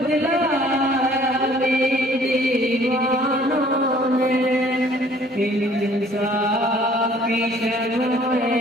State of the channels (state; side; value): normal; both; correlation 0.56